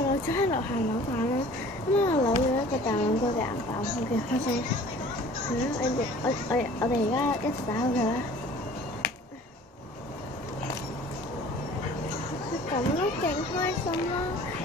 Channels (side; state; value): both; normal; correlation 0.48